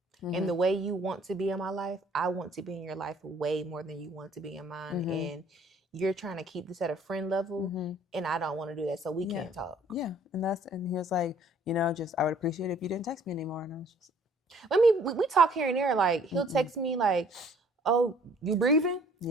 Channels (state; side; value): normal; both; correlation 0.57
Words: And the way you want to be in my life, I want to be in your life way more than you want to be in mine. And you're trying to keep this at a friend level, and I don't want to do that, so we can't talk. Yeah, and he was like, I would appreciate it if you didn't text me anymore. And I was just, we talk here and there. Like he'll text me like, "Oh, you breathing?